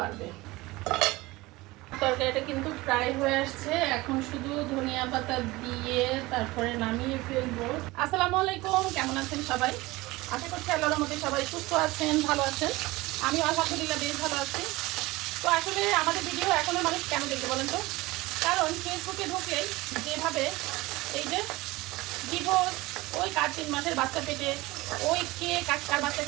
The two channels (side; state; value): left; quieter; 20.7 dB